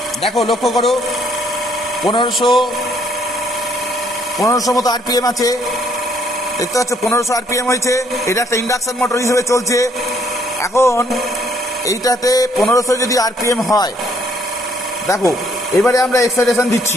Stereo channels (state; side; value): normal; both; correlation 0.67